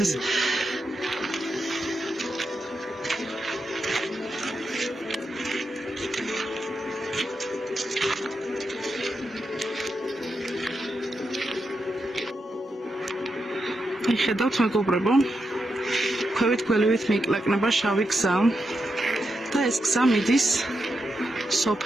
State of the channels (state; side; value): normal; both; correlation 0.85